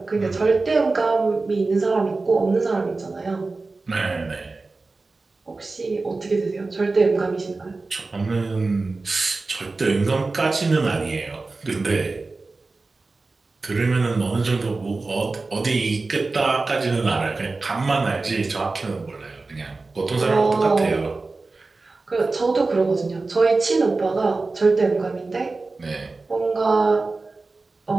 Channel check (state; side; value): quieter; left; 3.6 dB